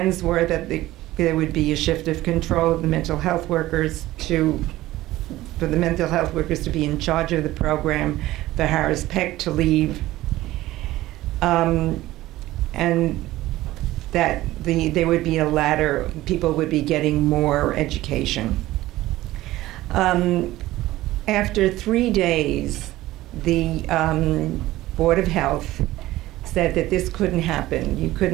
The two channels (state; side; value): quieter; left; 16.5 dB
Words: were that there would be a shift of control of the mental health workers for the mental health workers to be in charge of the program, for Harris Peck to leave, and that there would be a ladder, people would be getting more education. After 3 days, the Board of Health said that this couldn't happen. You